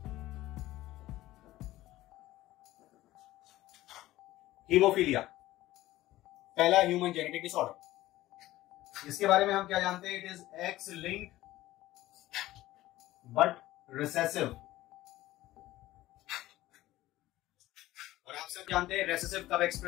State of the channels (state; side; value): quieter; right; 16.2 dB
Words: Haemophilia, पहला ह्यूमन जेनेटिक डिसऑर्डर। इसके बारे में हम क्या जानते हैं? It is X linked but recessive. और आप सब जानते हैं रिसेसिव कब